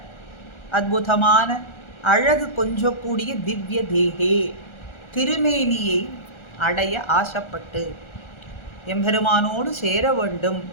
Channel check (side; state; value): right; late; 1.4 ms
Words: அற்புதமான அழகு கொஞ்சக்கூடிய திவ்ய தேகே திருமேனியை அடைய ஆசைப்பட்டு எம்பெருமானோடு சேர வேண்டும்,